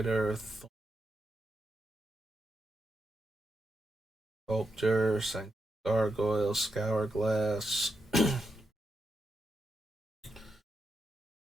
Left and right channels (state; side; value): normal; both; correlation 0.85